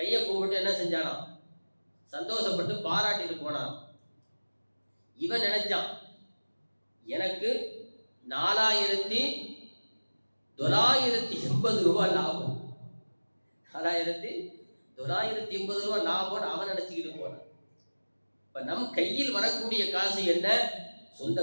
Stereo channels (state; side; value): inverted; both; correlation -1.00